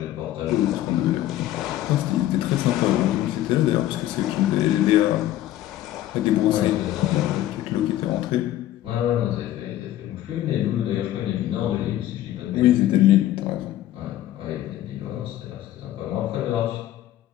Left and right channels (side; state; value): right; quieter; 13.6 dB